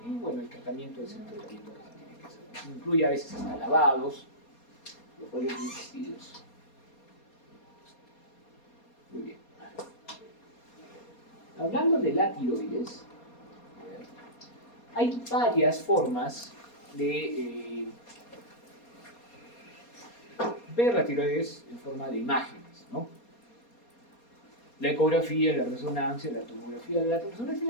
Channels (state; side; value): late; right; 4.2 ms